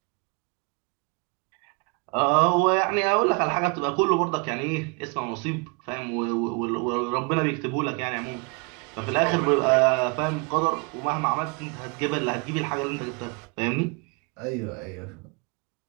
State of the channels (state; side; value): quieter; left; 32.6 dB